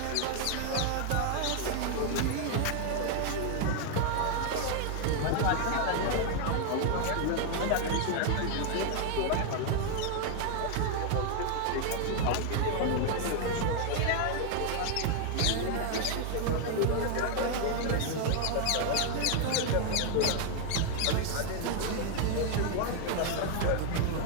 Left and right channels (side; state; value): both; different; correlation 0.00